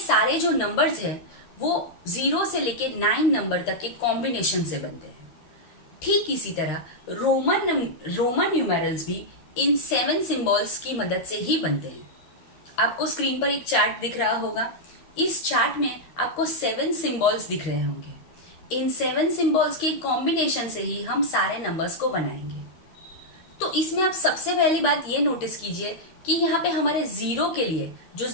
जो नंबर्स हैं वो 0 से लेके 9 नंबर तक के कॉम्बिनेशन से बनते हैं। ठीक इसी तरह रोमन न्यूमेरल्स भी इन 7 सिंबल्स की मदद से ही बनते हैं। आपको स्क्रीन पर एक चार्ट दिख रहा होगा। इस चार्ट में आपको 7 सिंबल्स दिख रहे होंगे। इन 7 सिंबल्स के कॉम्बिनेशन से ही हम सारे नंबर्स को बनाएंगे। तो इसमें आप सबसे पहली बात ये नोटिस कीजिए कि यहाँ पे हमारे 0 के लिए, जो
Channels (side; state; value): right; late; 13 ms